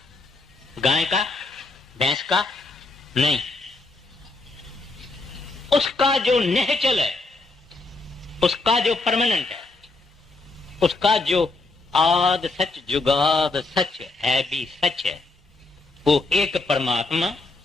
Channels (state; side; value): quieter; right; 3.3 dB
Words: गाय का, भैंस का? नहीं, उसका जो नेचुरल है, उसका जो परमानेंट है, उसका जो आद सच जुगाद सच है भी सच है, वो एक परमात्मा,